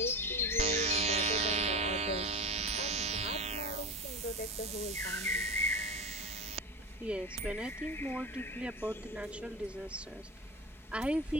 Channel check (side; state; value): both; normal; correlation 0.25